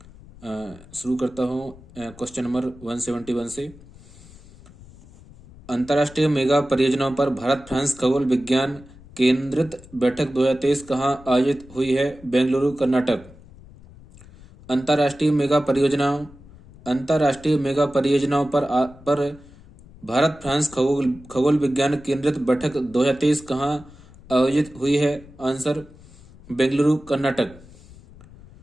शुरू करता हूँ क्वेश्चन नंबर 171 से। अंतर्राष्ट्रीय मेगा परियोजनाओं पर भारत फ्रांस खगोल विज्ञान केंद्रित बैठक 2023 कहाँ आयोजित हुई है? बेंगलुरु, कर्नाटक। अंतर्राष्ट्रीय मेगा परियोजनाओं पर भारत फ्रांस खगोल विज्ञान केंद्रित बैठक 2023 कहाँ आयोजित हुई है? Answer Bengaluru, Karnataka.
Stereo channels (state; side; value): noise; left; rumble, 21 dB below the sound